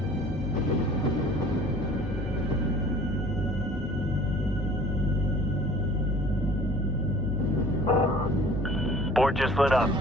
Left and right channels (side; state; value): both; normal; correlation 0.49